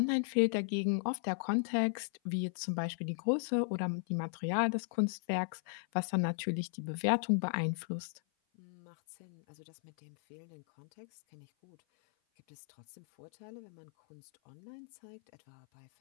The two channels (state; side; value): silent; right; 53 dB below the other